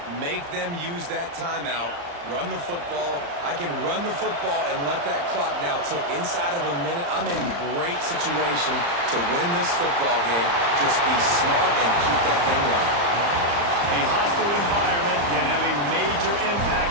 Make them use that timeout. Run the football. I can run the football and let that clock now tick inside of a minute. I'm in great situation to win this football game. Just be smart and keep that thing running. A hostile environment can have a major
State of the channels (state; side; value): late; left; 35 ms